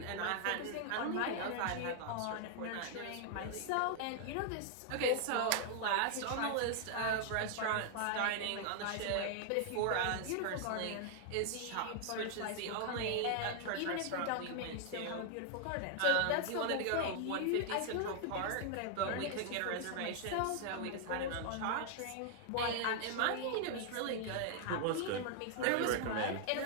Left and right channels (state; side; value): different; both; correlation 0.00